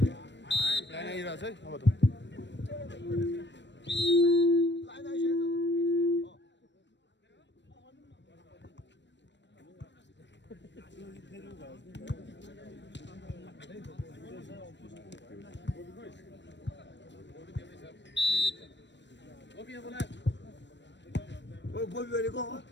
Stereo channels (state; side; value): late; right; 0.52 ms